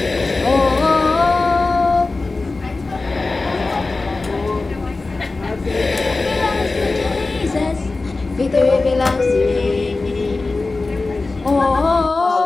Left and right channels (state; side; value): quieter; right; 3.5 dB